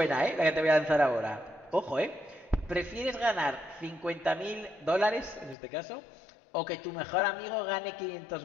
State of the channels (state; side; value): drops out; right; at 5.6 s